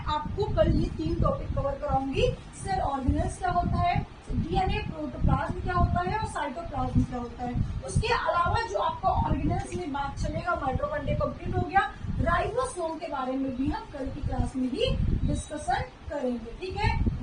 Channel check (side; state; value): both; identical; correlation 1.00